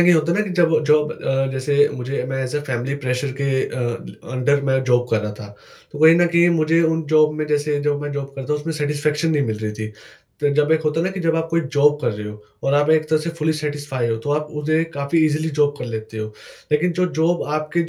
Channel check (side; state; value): both; identical; correlation 1.00